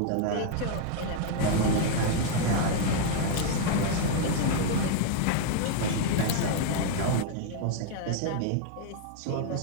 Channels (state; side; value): different; both; correlation 0.00